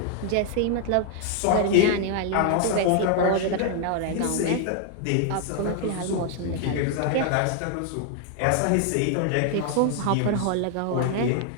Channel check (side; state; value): both; different; correlation 0.00